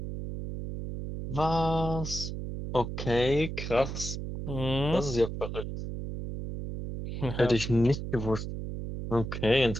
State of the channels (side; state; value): right; noise; hum, 6 dB below the sound